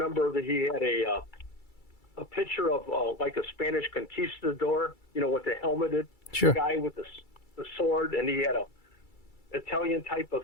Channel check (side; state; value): right; late; 2.3 ms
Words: that he had a picture of like a Spanish conquistador, with the helmeted guy with the sword, and he had a Italian type of